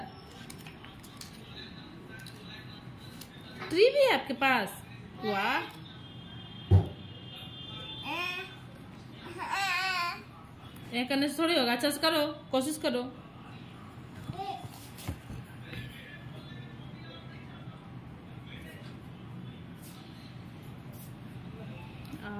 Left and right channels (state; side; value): identical; both; correlation 1.00